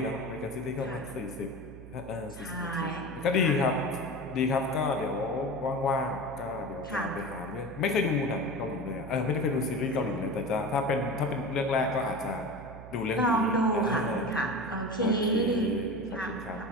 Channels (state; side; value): noise; right; hum, 15 dB below the sound